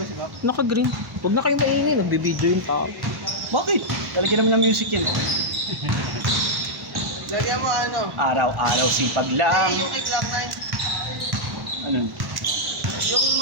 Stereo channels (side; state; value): left; late; 1.1 ms